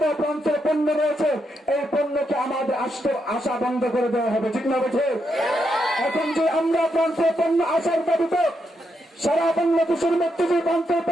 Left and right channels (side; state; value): both; normal; correlation 0.81